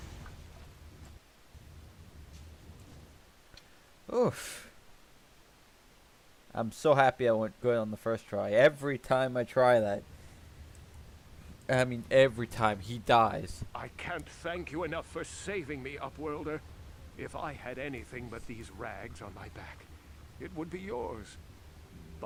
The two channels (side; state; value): both; identical; correlation 1.00